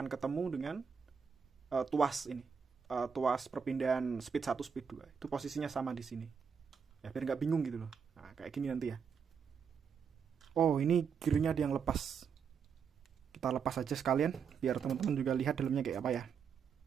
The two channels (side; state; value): left; quieter; 6.5 dB